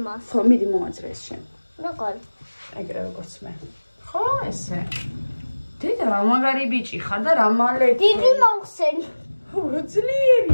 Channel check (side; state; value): both; inverted; correlation -1.00